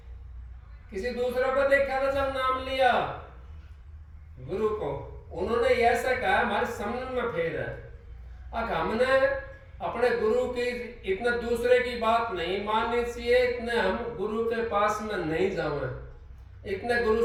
किसी दूसरे को देखा था जब नाम लिया गुरु को। उन्होंने ऐसा कहा हमारे समझ में फेर है। अब हमने अपने गुरु की इतने दूसरे की बात नहीं माननी चाहिए, इतने हम गुरु के पास में नहीं जावे, इतने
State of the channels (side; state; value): both; identical; correlation 1.00